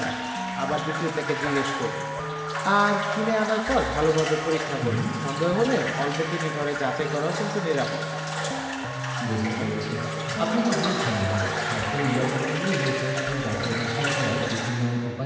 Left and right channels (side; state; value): both; identical; correlation 1.00